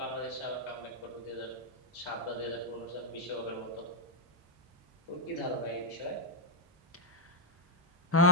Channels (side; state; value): both; normal; correlation -0.04